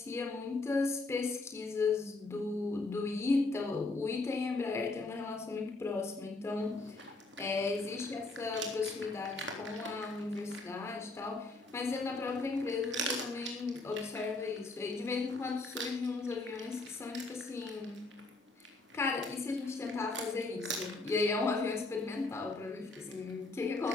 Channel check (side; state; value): right; quieter; 3.3 dB